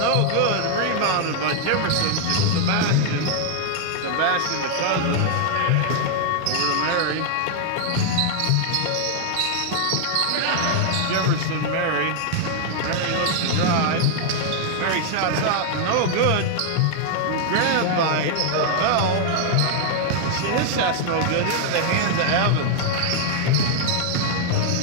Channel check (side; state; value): both; different; correlation 0.00